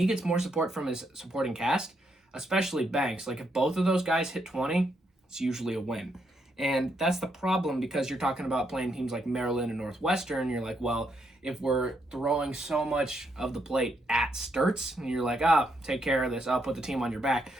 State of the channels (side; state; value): both; normal; correlation 0.77